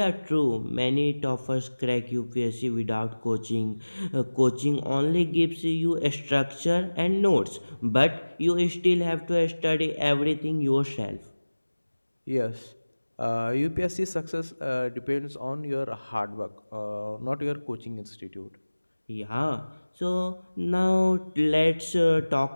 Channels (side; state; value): both; inverted; correlation -1.00